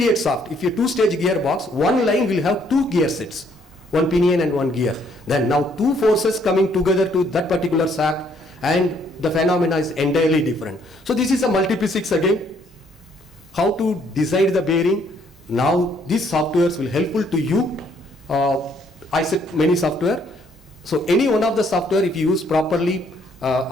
shaft, if you two-stage gearbox, one line will have two gear sets, one pinion and one gear. Then now two forces coming together to that particular shaft, and the phenomena is entirely different. So this is a multiphysics again. How to decide the bearing. Now these softwares will helpful to you. I said many software. So any one of the software, if you use properly,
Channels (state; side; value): normal; both; correlation 0.67